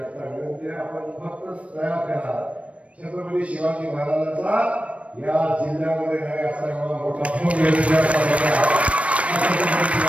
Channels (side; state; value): left; late; 0.063 ms